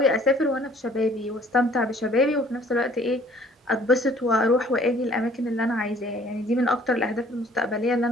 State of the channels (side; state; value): both; normal; correlation 0.56